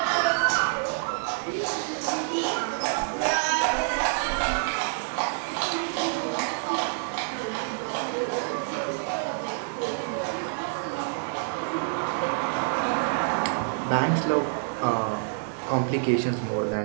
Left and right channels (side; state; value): left; silent; digital silence